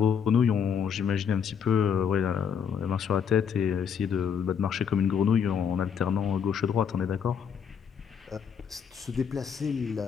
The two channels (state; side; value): quieter; right; 7.4 dB